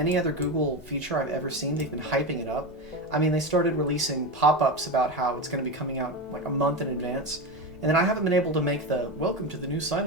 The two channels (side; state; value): both; normal; correlation 0.18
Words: other Google feature I've ever seen, they've been hyping it up. They started releasing pop-ups about how it's going to be coming out like a month in advance. And then I haven't been able to make the welcome to the new